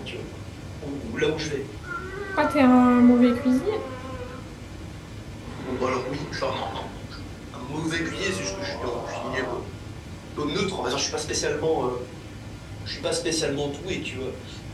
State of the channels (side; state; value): both; identical; correlation 1.00